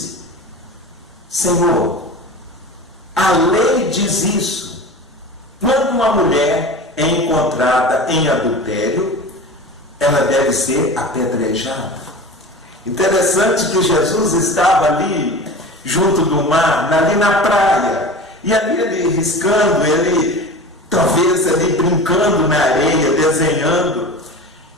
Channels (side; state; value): both; normal; correlation 0.34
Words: Senhor, a lei diz isso, quando uma mulher é encontrada em adultério, ela deve ser apedrejada. Interessante que Jesus estava ali junto do mar, ali na praia, e ali ele riscando, ele talvez ali brincando na areia, desenhando.